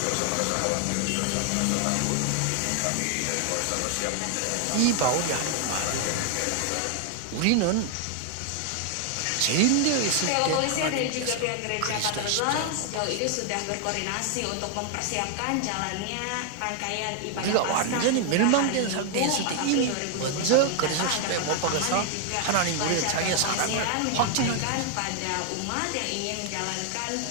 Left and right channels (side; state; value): both; different; correlation 0.00